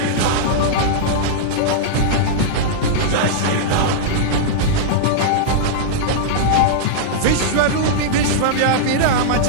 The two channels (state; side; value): different; both; correlation -0.02